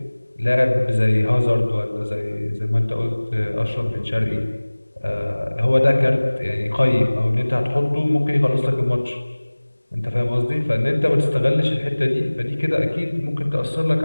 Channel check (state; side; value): inverted; both; correlation -1.00